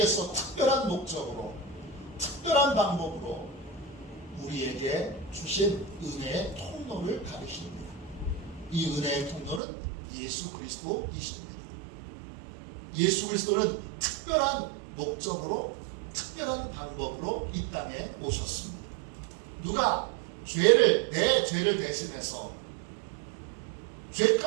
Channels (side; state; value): left; drops out; at 9.6 s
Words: 특별한 목적으로 특별한 방법으로 우리에게 주신 은혜의 통로를 가리킵니다. 이 은혜의 통로는 예수 그리스도이십니다. 예수 그리스도는 특별한 목적으로, 특별한 방법으로 이 땅에 오셨습니다. 누가 내 죄를 대신해서